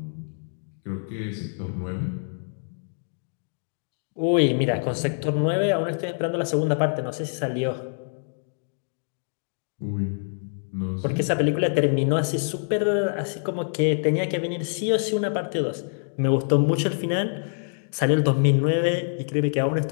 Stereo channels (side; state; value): right; silent; digital silence